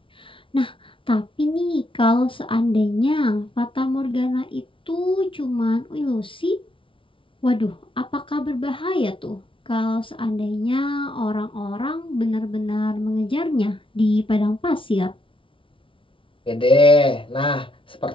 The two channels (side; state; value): right; late; 0.25 ms